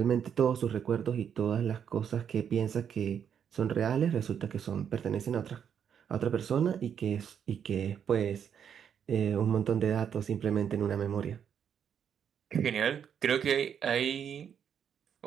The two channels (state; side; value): quieter; left; 8.2 dB